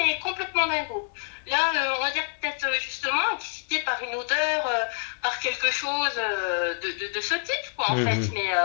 complètement dingo. Là, on va dire peut-être justement excité par une odeur, par quelque chose de ce type, quoi, en fait. Mais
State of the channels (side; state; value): right; silent; 60 dB below the other